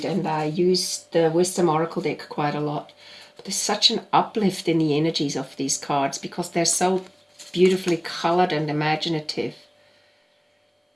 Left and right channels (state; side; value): identical; both; correlation 1.00